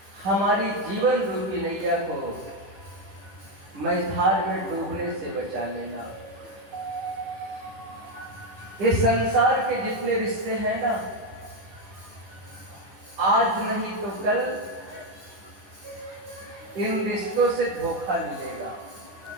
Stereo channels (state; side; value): late; left; 10 ms